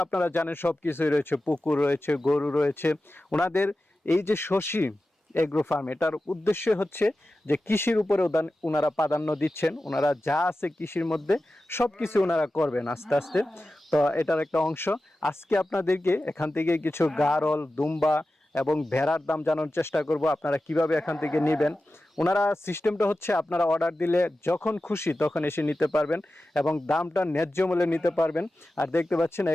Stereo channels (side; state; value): both; normal; correlation 0.94